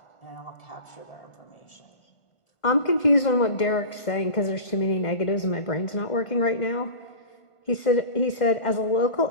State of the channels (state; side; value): late; right; 2.1 ms